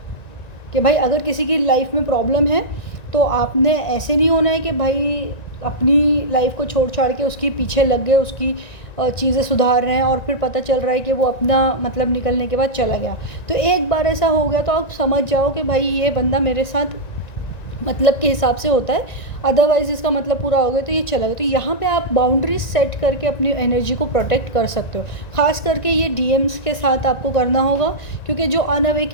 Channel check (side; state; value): right; late; 1.9 ms